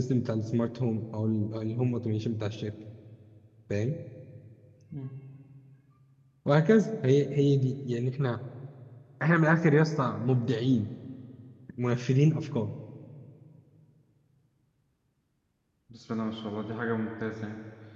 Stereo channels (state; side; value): identical; both; correlation 1.00